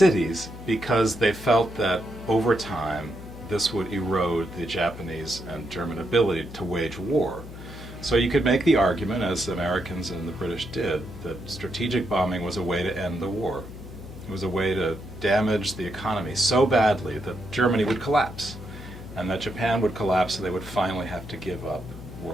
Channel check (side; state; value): left; noise; hum, 13 dB below the sound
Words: Because they felt that over time this would erode the Japanese and German ability to wage war. So you could make the argument, as the Americans and the British did, that strategic bombing was a way to end the war. It was a way to damage the economy so badly that Germany would collapse, and that Japan would collapse, so they would finally have to give up